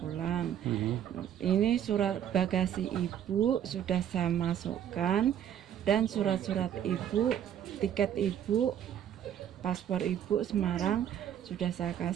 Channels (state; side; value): quieter; left; 9.9 dB